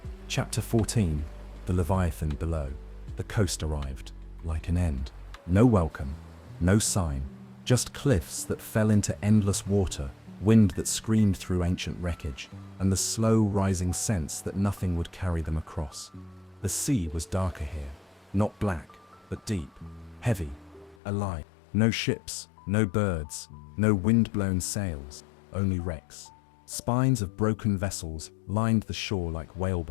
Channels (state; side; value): drops out; right; at 21.0 s